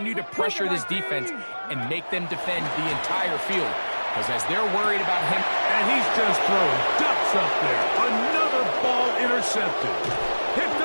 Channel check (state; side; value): inverted; both; correlation -1.00